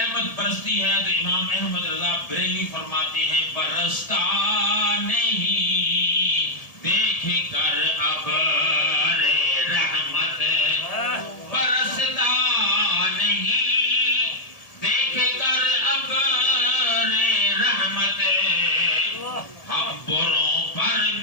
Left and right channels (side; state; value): right; late; 1.7 ms